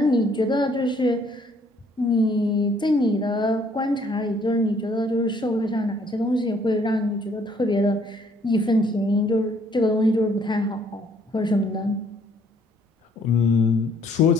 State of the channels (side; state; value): both; normal; correlation 0.63